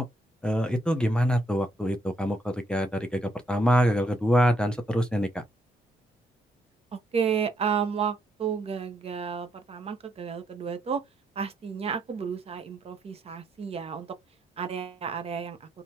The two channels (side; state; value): both; normal; correlation 0.75